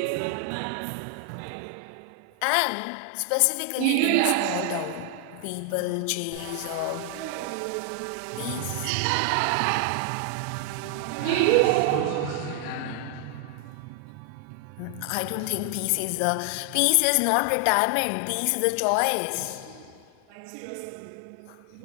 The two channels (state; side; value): different; both; correlation 0.00